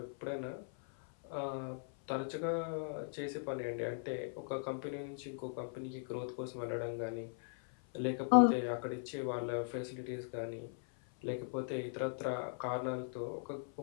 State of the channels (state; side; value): silent; right; 52 dB below the other